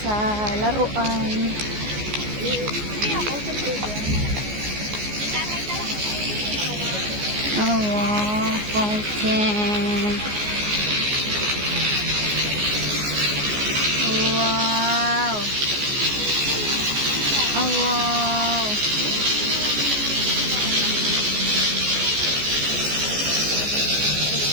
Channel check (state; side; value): late; left; 14 ms